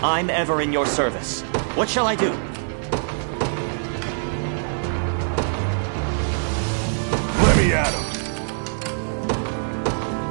I'm ever in your service. What shall I do? Let me at him.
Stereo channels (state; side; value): silent; left; digital silence